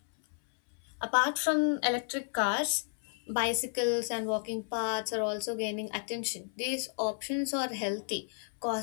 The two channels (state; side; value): silent; right; 56 dB below the other